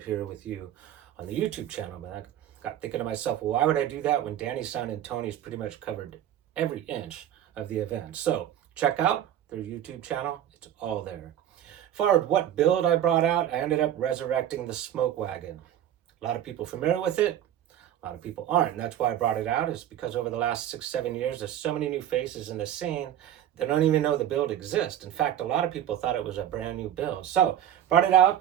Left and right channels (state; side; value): quieter; left; 11.0 dB